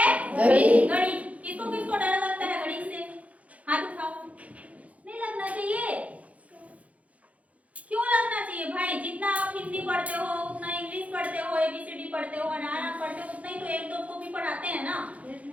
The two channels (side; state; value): left; late; 0.067 ms